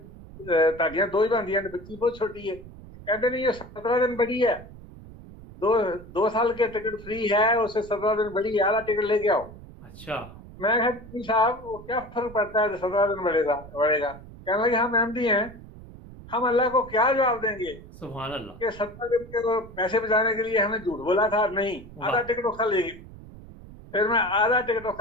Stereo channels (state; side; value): noise; right; rumble, 17 dB below the sound